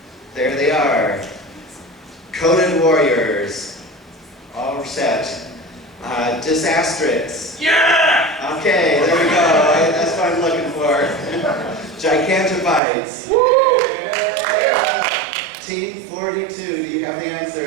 There they are. Coded Warriors. All set. Disastrix. Yeah! Okay, there we go. That's what I'm looking for. Gigantobytes. Team 42, do you have the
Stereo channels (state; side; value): drops out; left; at 12.8 s